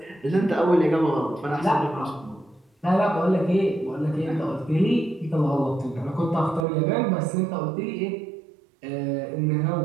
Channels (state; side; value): drops out; left; at 6.7 s